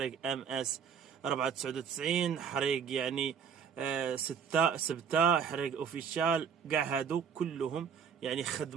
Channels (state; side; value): quieter; left; 7.1 dB